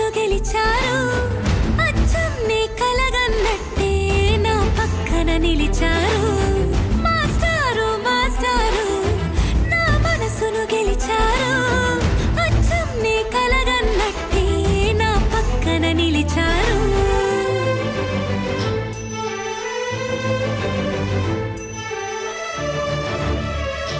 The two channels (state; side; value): identical; both; correlation 1.00